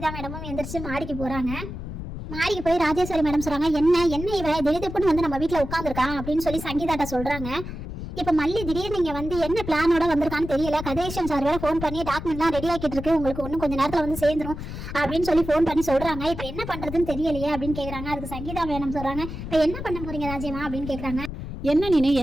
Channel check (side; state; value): left; noise; rumble, 8 dB below the sound